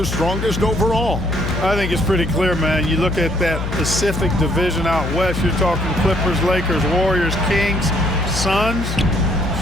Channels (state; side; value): noise; left; hum, 4 dB below the sound